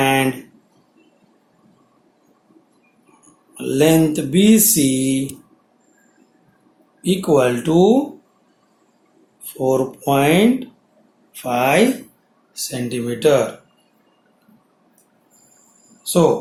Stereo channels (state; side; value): identical; both; correlation 1.00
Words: length BC equal to 4.5 centimeter.